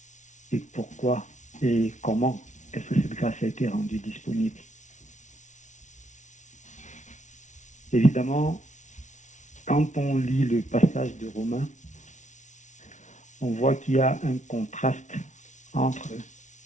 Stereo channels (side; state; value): right; late; 0.36 ms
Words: Et pourquoi et comment est-ce que cette grâce a été rendue disponible? Évidemment, quand on lit le passage de Romains, on voit qu'il y a un contraste entre